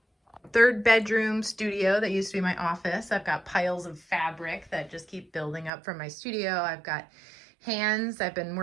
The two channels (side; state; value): left; drops out; at 5.7 s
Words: third bedroom studio that used to be my office. I've got piles of fabric that just keep building up from my studio. I've got hands. I've been